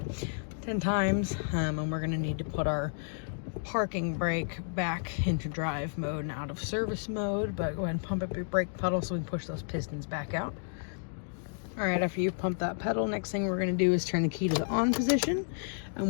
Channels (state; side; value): silent; right; digital silence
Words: 10 times. And we're going to need to put our parking brake back into drive mode and out of service mode, but go ahead and pump up your brake pedal so we can push those pistons back out. Alright, after you pump that pedal, next thing we're going to do is turn the key to the on position,